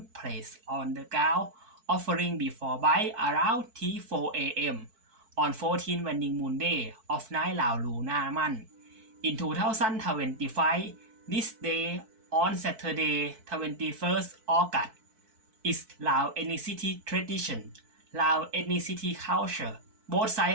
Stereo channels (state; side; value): late; left; 4.6 ms